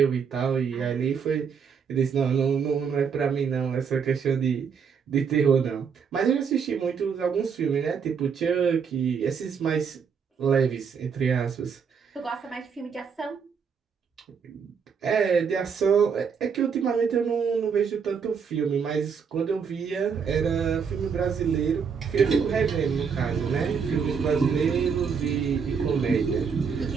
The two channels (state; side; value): quieter; left; 6.4 dB